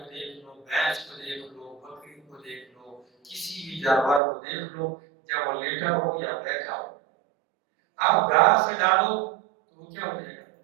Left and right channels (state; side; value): drops out; left; at 4.2 s